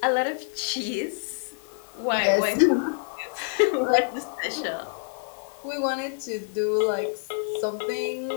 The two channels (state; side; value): silent; right; digital silence